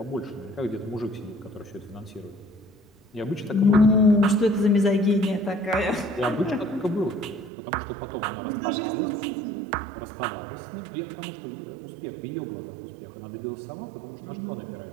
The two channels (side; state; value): left; drops out; at 7.5 s